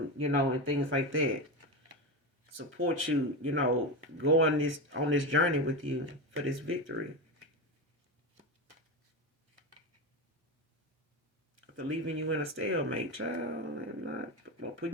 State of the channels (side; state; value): both; normal; correlation 0.17